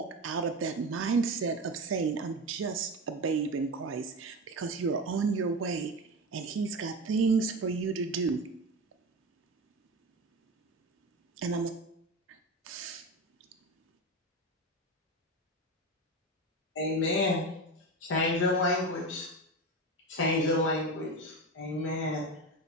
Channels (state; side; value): normal; both; correlation 0.22